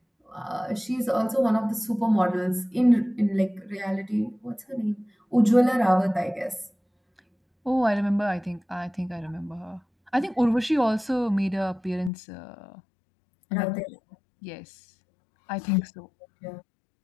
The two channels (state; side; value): drops out; right; at 12.1 s